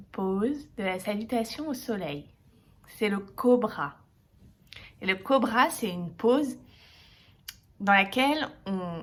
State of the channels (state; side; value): identical; both; correlation 1.00